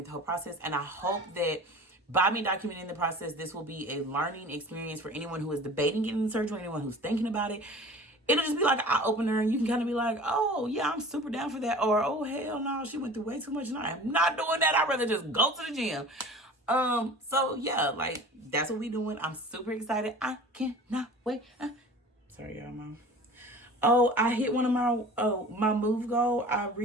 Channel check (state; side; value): normal; both; correlation 0.41